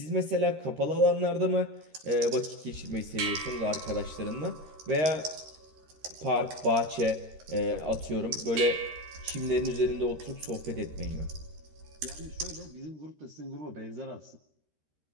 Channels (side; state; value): left; late; 13 ms